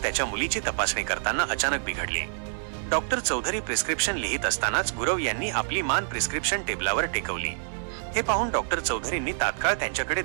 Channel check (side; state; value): left; silent; digital silence